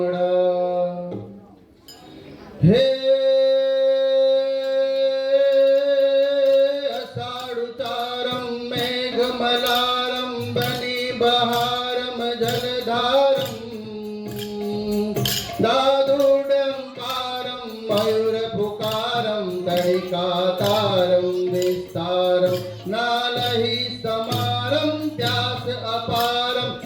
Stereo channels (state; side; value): identical; both; correlation 1.00